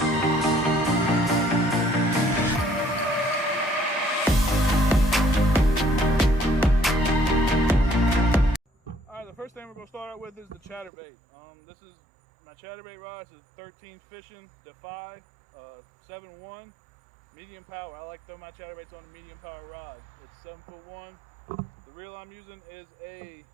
The first thing we're going to start out with is the chatterbait. This is my chatterbait rod. It's a 13 Fishing Defy 7-1 medium power. I like to throw my chatterbaits on a medium power rod. It's 7'1". The reel I'm using is a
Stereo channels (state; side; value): drops out; left; at 10.9 s